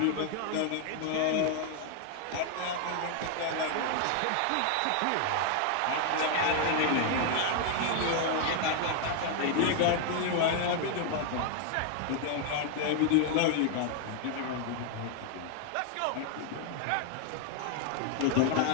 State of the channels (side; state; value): both; different; correlation 0.00